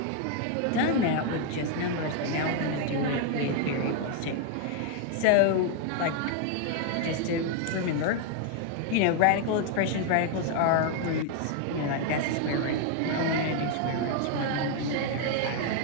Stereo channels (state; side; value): different; both; correlation 0.00